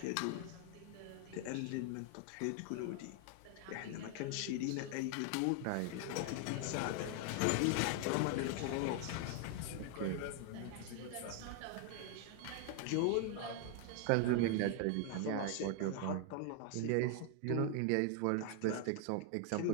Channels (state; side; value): different; both; correlation 0.00